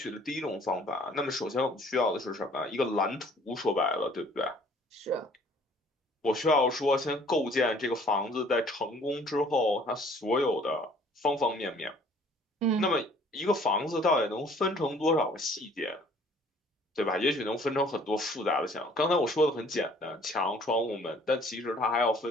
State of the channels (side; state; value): both; normal; correlation 0.56